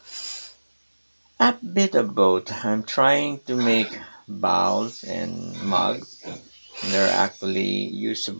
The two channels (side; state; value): both; inverted; correlation -1.00